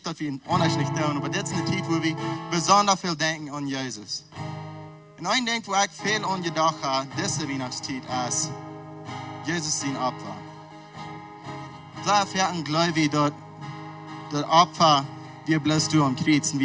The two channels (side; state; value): both; identical; correlation 1.00